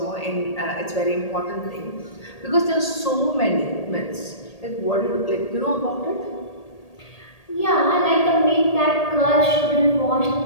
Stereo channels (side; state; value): right; late; 1.8 ms